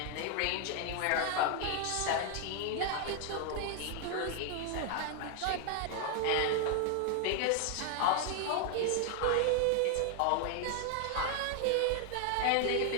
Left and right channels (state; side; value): different; both; correlation 0.00